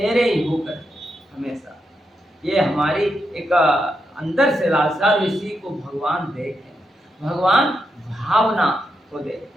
ही होकर हमेशा। ये हमारी एक अंदर से लालसा, इसी को भगवान देखते हैं, भगवान भावना को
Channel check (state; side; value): normal; both; correlation 0.84